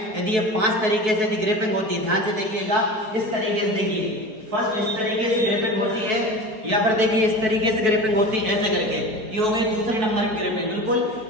यदि ये 5 तरीके से यदि ग्रिपिंग होती है, ध्यान से देखिएगा। इस तरीके से देखिए, फर्स्ट इस तरीके से ग्रिपिंग होती है, या फिर देखिए इस तरीके से ग्रिपिंग होती है ऐसे करके। ये हो गई दूसरे नंबर की ग्रिपिंग। बिल्कुल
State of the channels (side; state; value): left; late; 4.6 ms